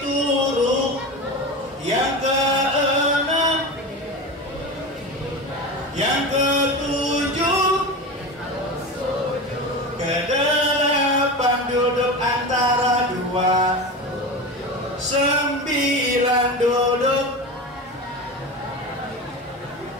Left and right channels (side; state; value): both; normal; correlation 0.26